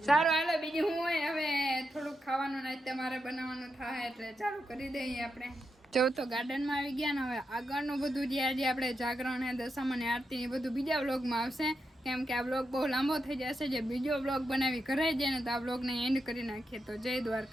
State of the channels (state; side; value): normal; both; correlation 0.85